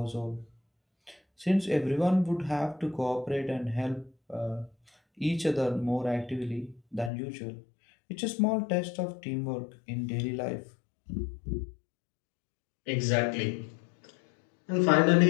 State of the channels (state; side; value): drops out; right; at 7.1 s